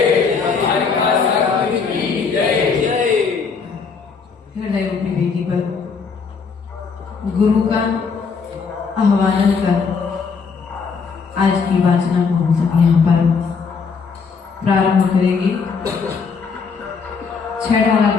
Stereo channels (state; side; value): quieter; right; 5.4 dB